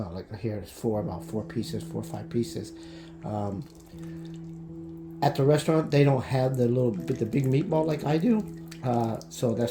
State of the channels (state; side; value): identical; both; correlation 1.00